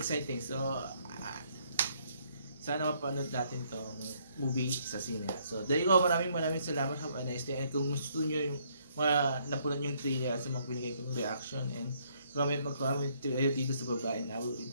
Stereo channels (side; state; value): both; inverted; correlation -0.69